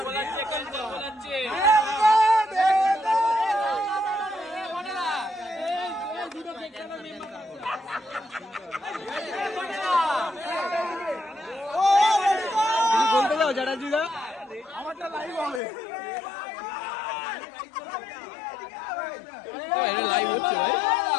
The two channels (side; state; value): right; drops out; at 15.6 s